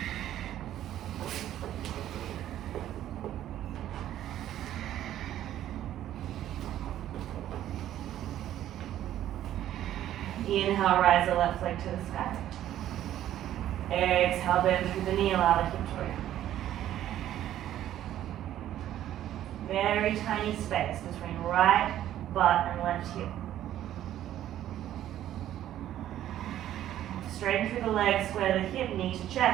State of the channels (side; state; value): left; quieter; 12.2 dB